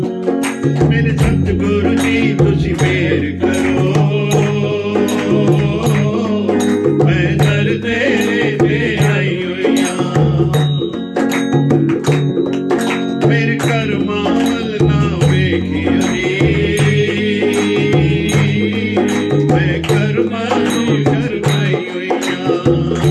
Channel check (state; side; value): identical; both; correlation 1.00